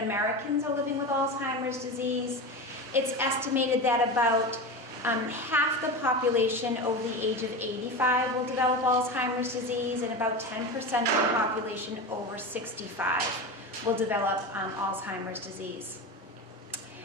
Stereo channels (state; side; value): normal; both; correlation 0.24